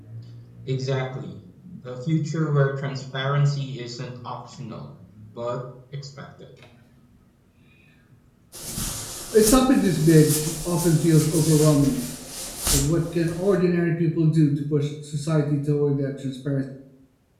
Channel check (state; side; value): identical; both; correlation 1.00